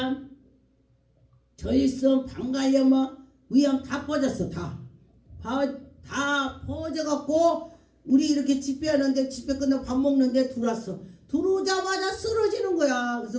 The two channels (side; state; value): both; identical; correlation 1.00